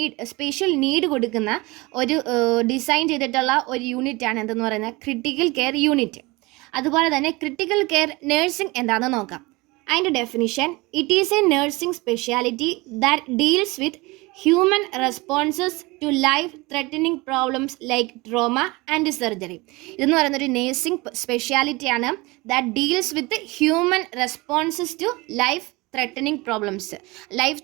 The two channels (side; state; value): left; quieter; 23.5 dB